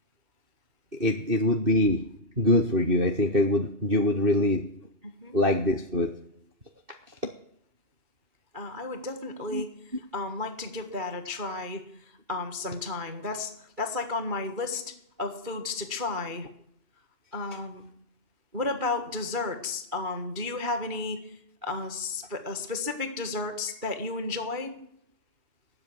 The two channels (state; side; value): late; left; 2.4 ms